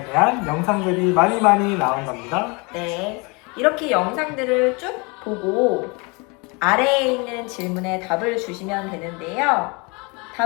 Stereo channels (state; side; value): quieter; right; 29.2 dB